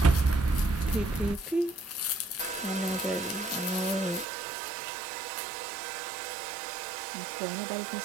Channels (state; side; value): drops out; left; at 4.2 s